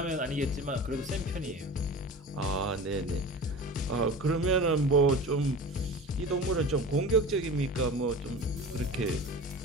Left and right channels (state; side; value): normal; both; correlation 0.35